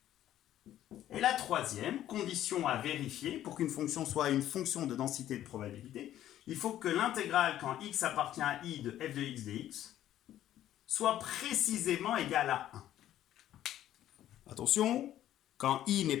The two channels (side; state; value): right; quieter; 12.4 dB